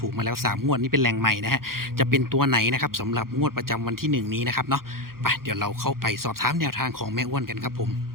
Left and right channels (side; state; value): left; late; 0.92 ms